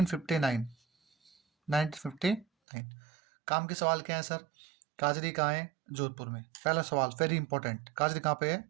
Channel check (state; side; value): drops out; left; at 2.5 s